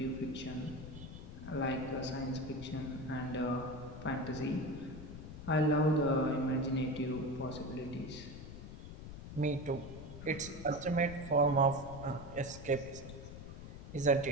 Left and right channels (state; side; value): noise; left; rumble, 11 dB below the sound